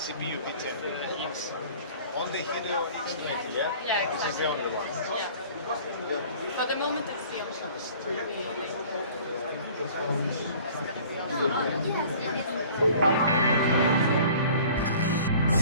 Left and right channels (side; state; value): both; inverted; correlation -0.49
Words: E10, X. On the Helio X20, yeah? Yeah, This is the only one. Yeah. For the moment, it's the only one. It's gonna be